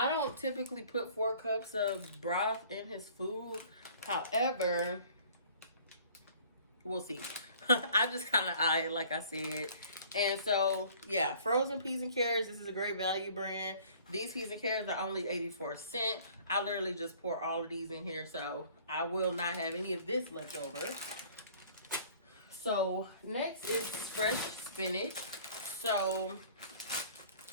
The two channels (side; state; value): both; inverted; correlation -0.52